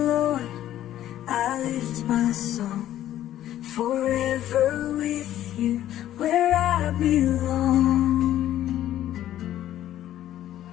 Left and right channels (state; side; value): quieter; right; 12.5 dB